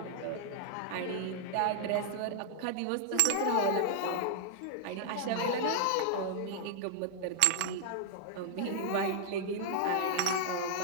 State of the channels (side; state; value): both; different; correlation 0.00